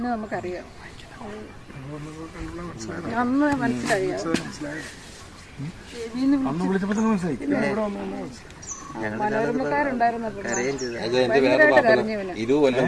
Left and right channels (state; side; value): identical; both; correlation 1.00